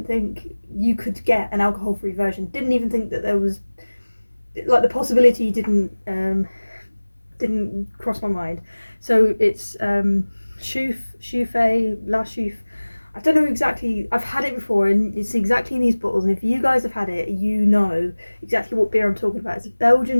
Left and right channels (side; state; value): both; inverted; correlation -1.00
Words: think you could get an alcohol-free version. Didn't even think that there was, like, the possibility didn't cross my mind. So it's Chouffe, La Chouffe. I don't know exactly. I've had it before, and it's exactly in these bottles. And if you guys have had it, you know exactly what beer I'm talking about. It's a